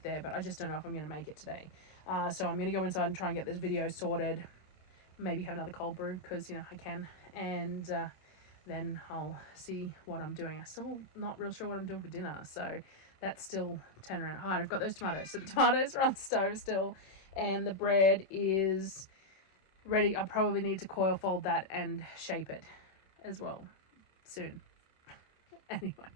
there, but I just don't know if I'm going to make it today. So I'm going to go inside and try and get this video sorted. Maybe have another cold brew, because, you know, I can. And then I'll see what I'm doing. I'm still not real sure what I'm doing for dinner, so that's still turn around. Hi, I've got those tomatoes. So the tomatoes are on the stove still, and the bread is ready. I probably need to coil fold that and shape it as well soon.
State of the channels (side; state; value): right; late; 26 ms